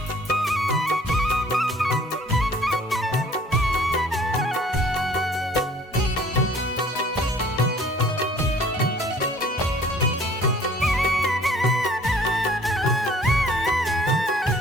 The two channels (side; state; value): both; normal; correlation 0.54